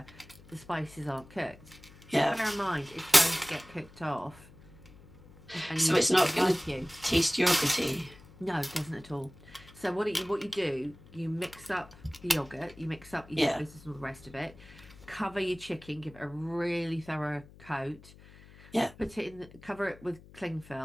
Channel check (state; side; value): noise; left; hum, 21 dB below the sound